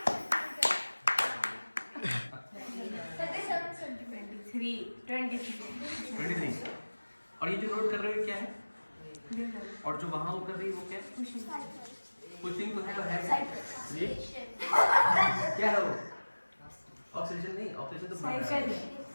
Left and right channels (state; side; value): inverted; both; correlation -1.00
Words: 23 और ये जो नोट कर रहे हो क्या है और जो वहां वो कर रही है वो क्या है पुशिंग तो है तो है ये क्या है वो ऑक्सीजन नहीं ऑक्सीजन तो